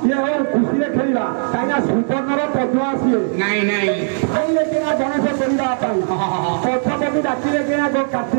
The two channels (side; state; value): left; silent; digital silence